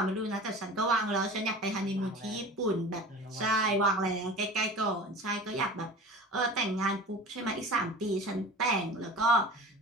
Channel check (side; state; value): both; normal; correlation 0.37